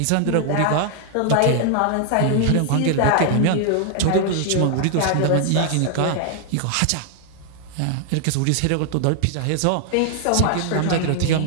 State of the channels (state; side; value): different; both; correlation 0.00